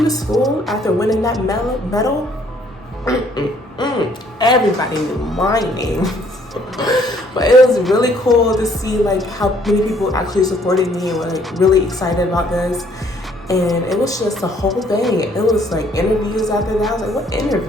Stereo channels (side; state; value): both; normal; correlation 0.63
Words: school after winning that medal, everybody knew my name. But it was really cool to see like how many people actually supported me and were like really excited about this. And it was just a whole thing. It was like interviews after that. I was like, what